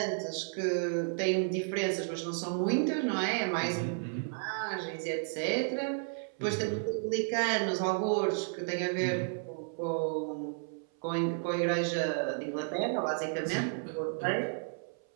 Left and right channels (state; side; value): silent; left; 56 dB below the other